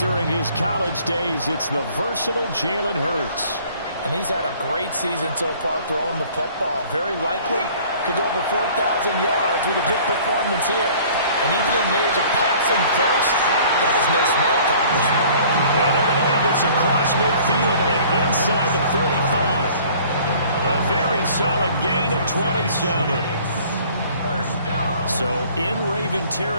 his college days. It's the versatile Jalen Hurts. And he's had a great season so far throwing the football. Very likely could go over 4,000 yards with a good performance here. And even in the age of passing first, that is no small accomplishment. And they're going to have this across midfield and inside the 45. A very solid gain of 27. So in Raven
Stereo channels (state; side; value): inverted; both; correlation -0.52